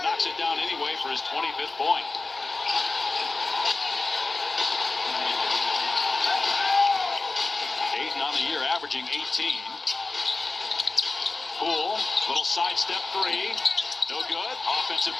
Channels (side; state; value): right; quieter; 3.5 dB